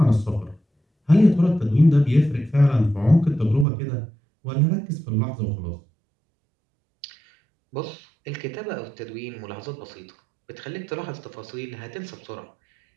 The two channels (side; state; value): left; drops out; at 3.7 s